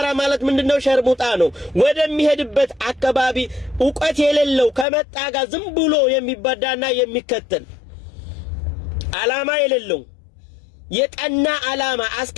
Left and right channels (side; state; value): right; drops out; at 4.9 s